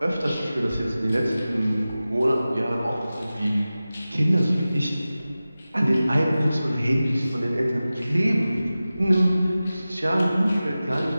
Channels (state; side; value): inverted; both; correlation -0.96